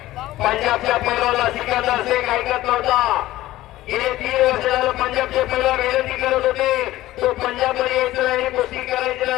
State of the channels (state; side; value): quieter; right; 16.0 dB